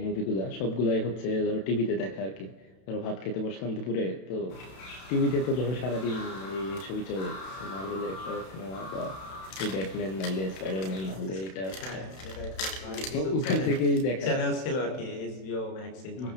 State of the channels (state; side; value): late; right; 32 ms